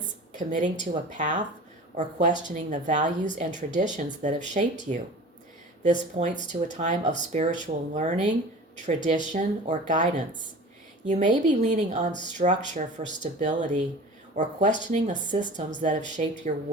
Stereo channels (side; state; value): both; normal; correlation 0.39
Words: committing to a path, or questioning the values and traditions that have shaped you. This points to a time of spiritual learning, tradition, or guidance. You may be leaning on structure for stability or questioning the systems that have shaped your